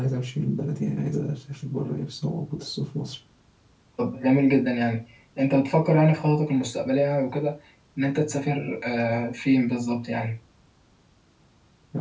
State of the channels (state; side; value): identical; both; correlation 1.00